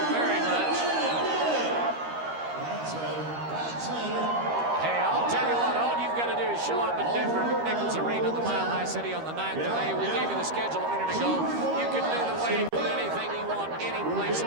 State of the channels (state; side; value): late; left; 13 ms